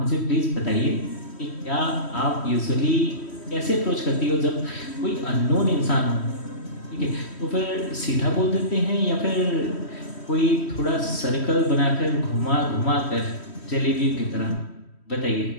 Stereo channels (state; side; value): late; right; 3.1 ms